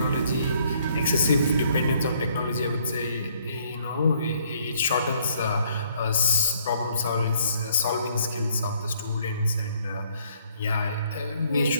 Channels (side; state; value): both; inverted; correlation -0.66